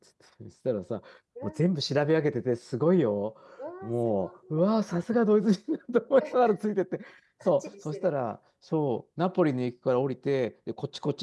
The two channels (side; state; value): both; identical; correlation 1.00